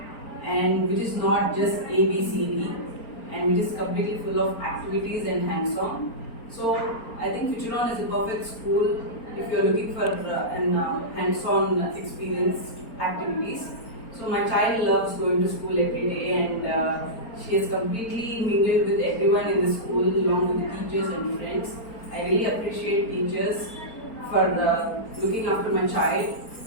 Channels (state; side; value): late; right; 4.4 ms